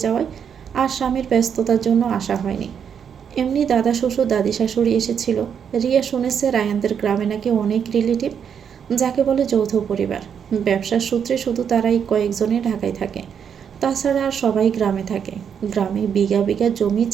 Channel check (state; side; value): quieter; left; 7.7 dB